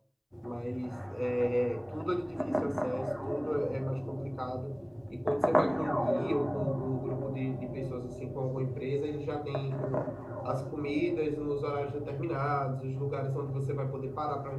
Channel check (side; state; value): both; identical; correlation 1.00